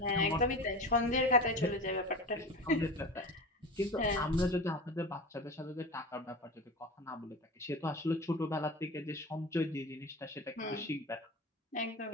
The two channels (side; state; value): both; normal; correlation 0.30